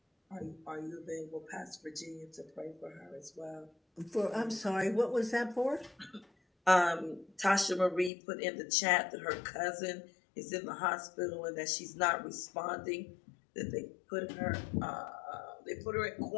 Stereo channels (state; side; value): drops out; right; at 8.1 s